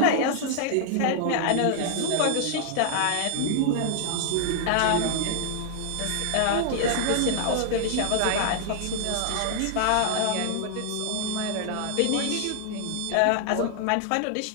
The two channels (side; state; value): both; different; correlation 0.00